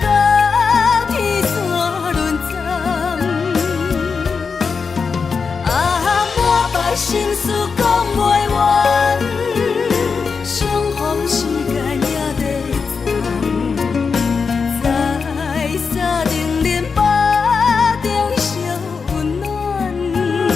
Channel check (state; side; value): quieter; right; 5.3 dB